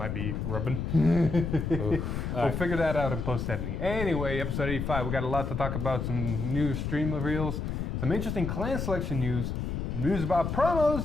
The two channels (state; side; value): noise; left; rumble, 3 dB below the sound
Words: be rubbing. We'll figure that out in post-editing. Anyway, episode 85, we got a lot to talk about. Some new stream reveals, some interesting clan selection news about